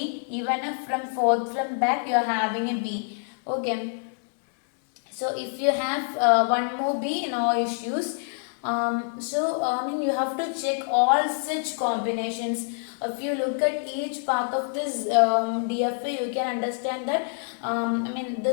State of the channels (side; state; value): right; silent; 59 dB below the other